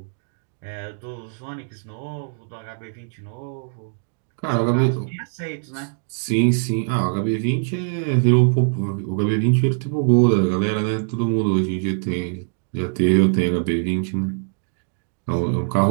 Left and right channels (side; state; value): left; silent; digital silence